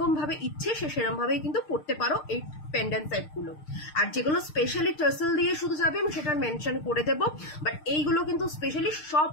ভাবে ইচ্ছে সে সেরকম ভাবেই কিন্তু পরতে পারো এই পেন্ডেন্ট সেটগুলো। আর যেগুলো স্পেশালি টার্সেল দিয়ে শুধু যাবে আমি সেটা মেনশন করে দেবো, বাট এইগুলো কিন্তু স্পেশালি সব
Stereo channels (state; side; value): late; right; 6.6 ms